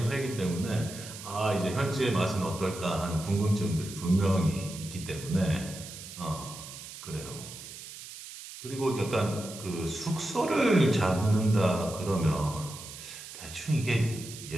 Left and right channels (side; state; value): right; noise; hiss, 13 dB below the sound